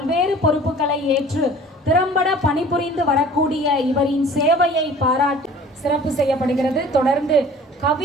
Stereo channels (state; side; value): normal; both; correlation 0.46